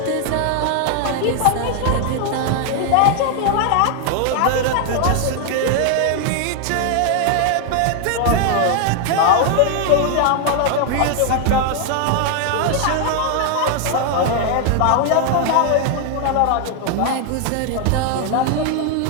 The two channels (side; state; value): both; different; correlation 0.00